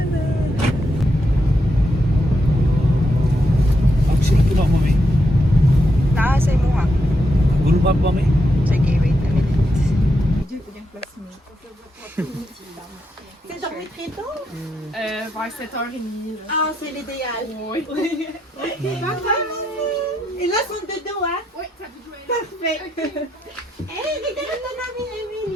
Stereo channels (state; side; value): normal; both; correlation 0.81